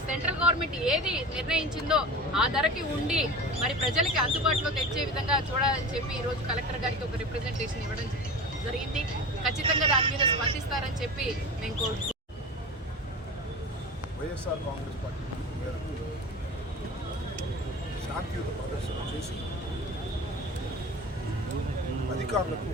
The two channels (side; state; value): both; normal; correlation 0.32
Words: సెంట్రల్ గవర్నమెంట్ ఏది నిర్ణయించిందో ఆ ధరకి ఉండి మరి ప్రజలకి అందుబాటులో తెచ్చే విధంగా చూడాలని చెప్పి ఈరోజు కలెక్టర్ గారికి ఒక రిప్రజెంటేషన్ ఇవ్వడం జరిగింది. ఖచ్చితంగా దాని మీద స్పందిస్తారని చెప్పి నేను కోరుకుంటున్నాను. వైఎస్ఆర్ కాంగ్రెస్ పార్టీ మేరకు శాంతియుత ప్రదర్శన చేసి అధికారులకు